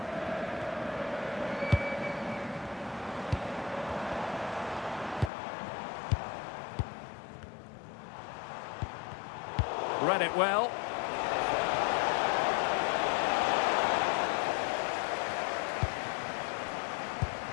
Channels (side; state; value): right; drops out; at 5.3 s